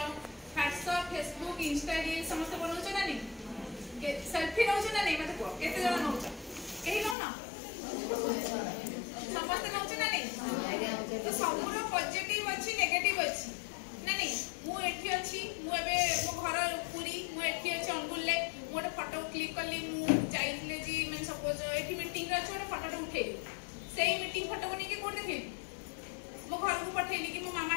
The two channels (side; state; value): right; drops out; at 7.2 s